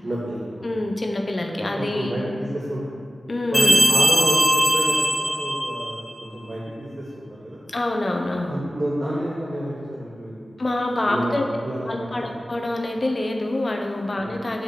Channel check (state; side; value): normal; both; correlation 0.95